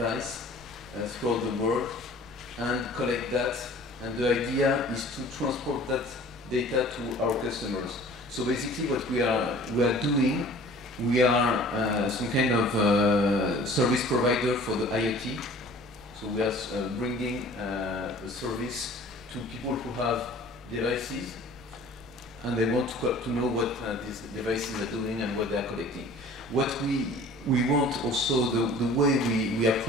throughout the world and collect that. And the idea is to transport that data to our customers. So basically, what we are doing, we are some kind of service provider for the IoT. So we are bringing a service to people who have devices, and they want to know what these devices are doing and what they are collecting. What we want also, the way we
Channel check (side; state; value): left; noise; rumble, 23 dB below the sound